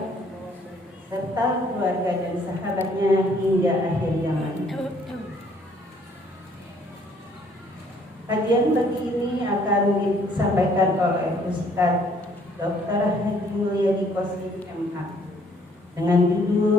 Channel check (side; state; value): both; normal; correlation 0.63